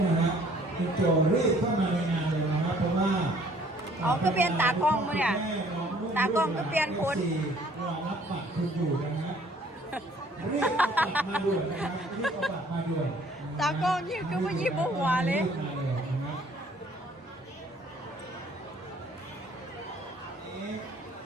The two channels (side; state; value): both; normal; correlation 0.58